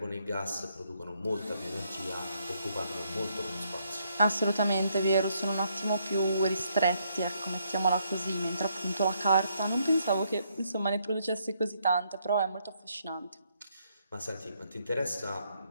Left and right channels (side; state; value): both; inverted; correlation -0.74